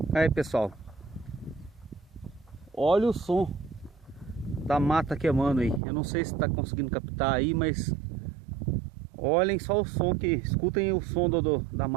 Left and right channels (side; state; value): left; drops out; at 5.8 s